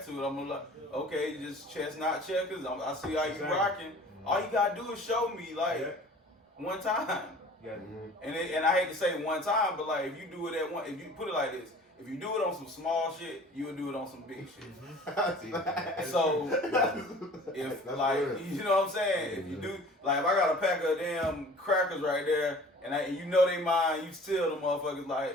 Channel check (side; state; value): both; normal; correlation 0.46